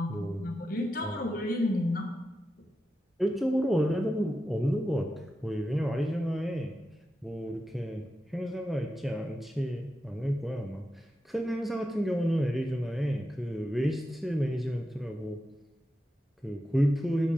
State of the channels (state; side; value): normal; both; correlation 0.89